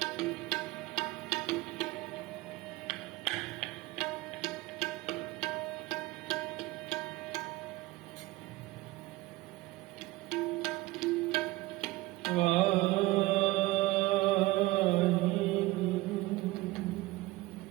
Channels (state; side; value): quieter; left; 19.7 dB